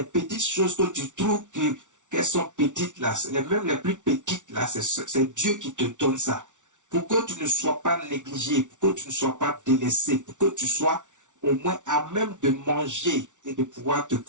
petites choses que tu trouves qu'elles sont petites là, même les plus petites là, c'est Dieu qui te donne ça. Pour que tu ne sois pas négligé, pour que tu ne sois pas délaissé, pour que tu sois au moins à même de manger et de pouvoir te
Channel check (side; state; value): left; late; 0.86 ms